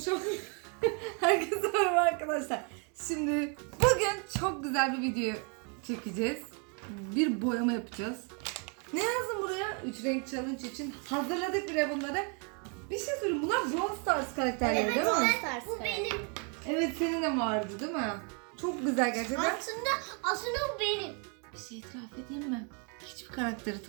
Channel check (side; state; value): left; quieter; 37.2 dB